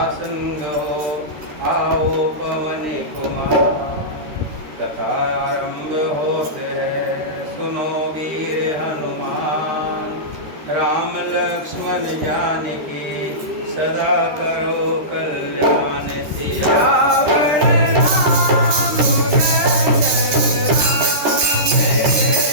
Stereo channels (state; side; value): late; left; 13 ms